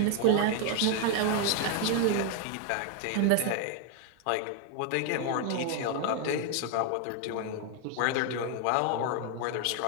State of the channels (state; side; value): different; both; correlation 0.01